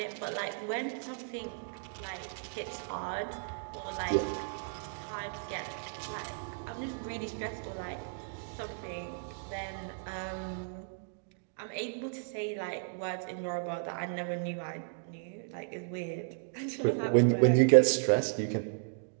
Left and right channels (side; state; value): left; silent; digital silence